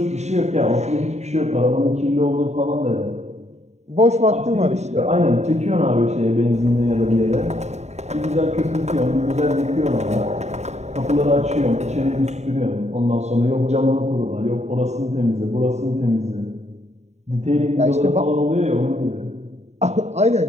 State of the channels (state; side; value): late; left; 0.32 ms